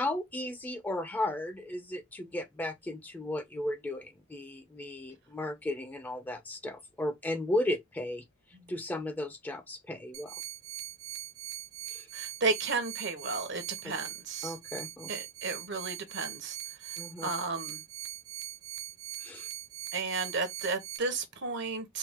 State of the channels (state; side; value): normal; both; correlation 0.29